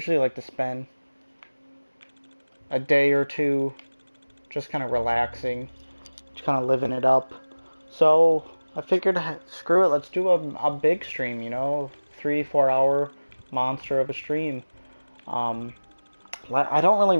like to spend a day or two just kind of relaxing, just kind of living it up. So I figured, screw it, let's do a big stream, 3-4 hour monster of a stream. I don't really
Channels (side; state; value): both; inverted; correlation -1.00